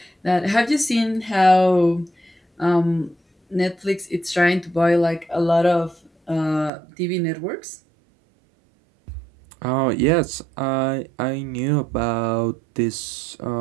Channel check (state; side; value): drops out; left; at 6.7 s